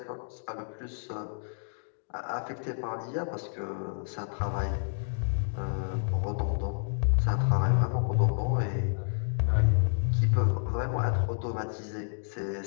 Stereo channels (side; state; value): right; silent; digital silence